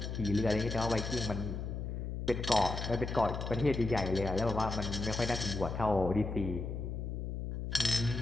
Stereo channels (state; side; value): noise; left; hum, 4 dB below the sound